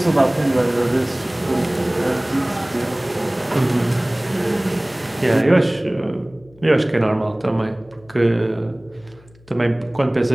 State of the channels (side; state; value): left; noise; hum, 27 dB below the sound